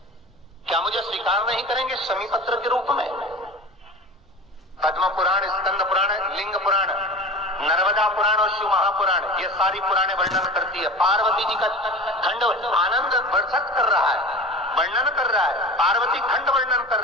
क्या मुझे स्वीकार नहीं करेंगे शमीपत्र के रूप में? पद्म पुराण, स्कंद पुराण, लिंग पुराण, नर्मदा पुराण और शिव महापुराण, ये सारी पुराणे वर्णन करती है। पार्वती जी का खंड आनंद वर्षक कर रहा है, वर्णन कर रहा है। पार्वती खंड वर्णन कर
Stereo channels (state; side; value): normal; both; correlation 0.34